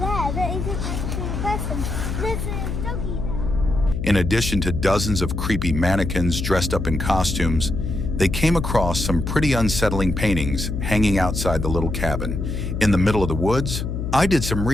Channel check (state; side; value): noise; left; hum, 3 dB below the sound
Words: that isn't actually a person. There's a doggy there. In addition to dozens of creepy mannequins dressed up in costumes, they came across some pretty unsettling paintings hanging outside the little cabin. In the middle of the woods, I did some